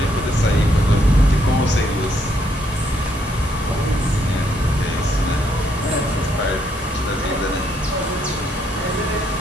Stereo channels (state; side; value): normal; both; correlation 0.72